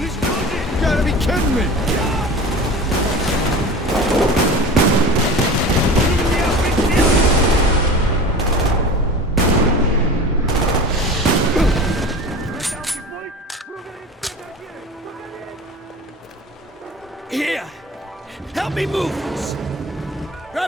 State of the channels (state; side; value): normal; both; correlation 0.35